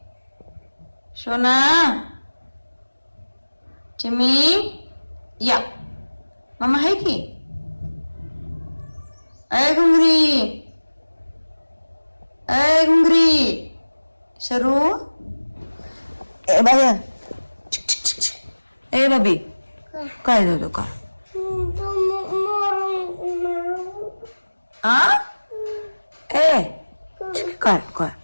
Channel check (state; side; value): inverted; both; correlation -1.00